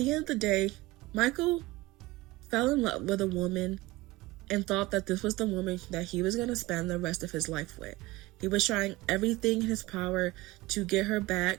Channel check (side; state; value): left; quieter; 20.0 dB